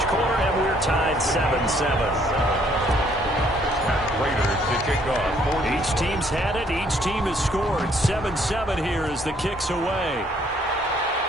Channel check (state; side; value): normal; both; correlation 0.65